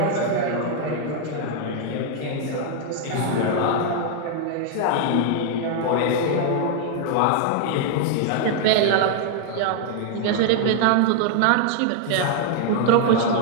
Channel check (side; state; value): both; different; correlation 0.00